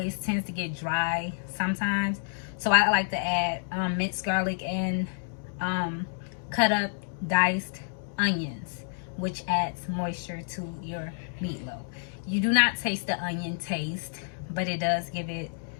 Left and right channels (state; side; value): silent; right; digital silence